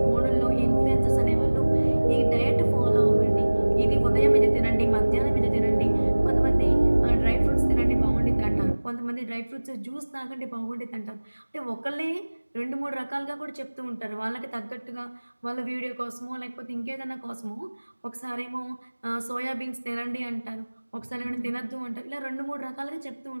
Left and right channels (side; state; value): both; inverted; correlation -1.00